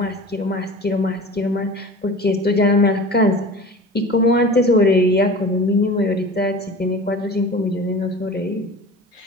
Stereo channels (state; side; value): normal; both; correlation 0.38